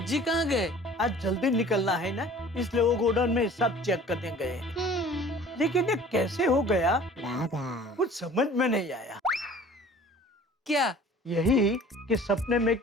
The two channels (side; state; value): both; normal; correlation 0.48